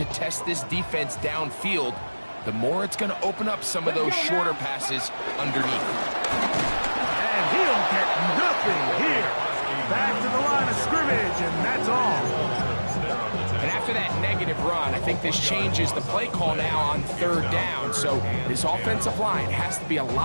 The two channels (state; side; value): inverted; both; correlation -1.00